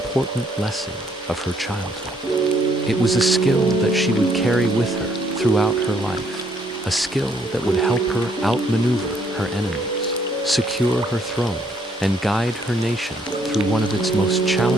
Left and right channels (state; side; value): normal; both; correlation 0.68